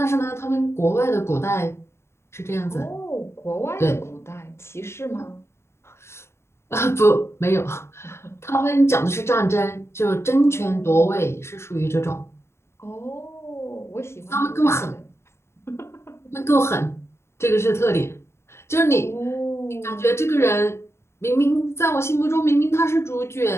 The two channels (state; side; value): late; right; 0.13 ms